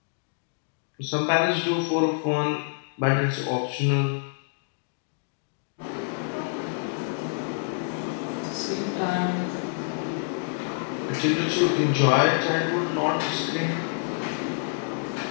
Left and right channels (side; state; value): right; silent; digital silence